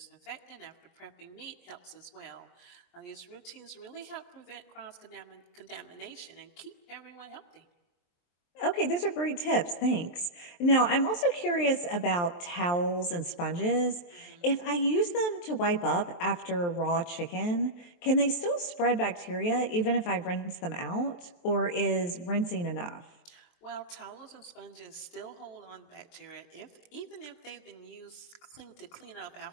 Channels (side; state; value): right; late; 23 ms